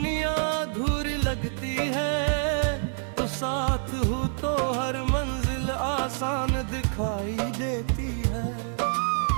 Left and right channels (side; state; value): left; silent; digital silence